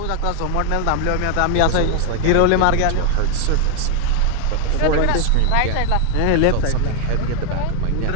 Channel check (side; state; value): both; different; correlation 0.00